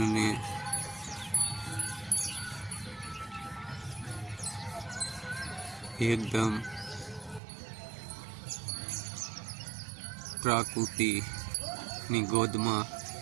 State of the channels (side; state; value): left; drops out; at 7.4 s